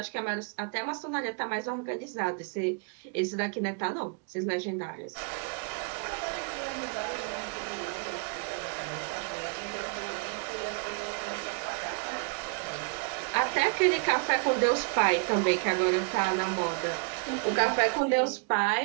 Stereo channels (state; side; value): quieter; left; 36.7 dB